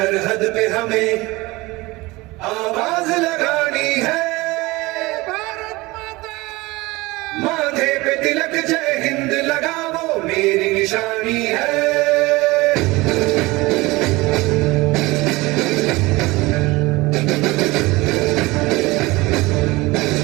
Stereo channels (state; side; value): quieter; left; 21.7 dB